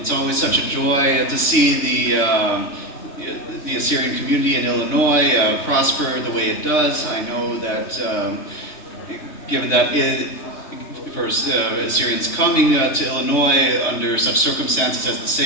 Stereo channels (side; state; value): right; late; 3.6 ms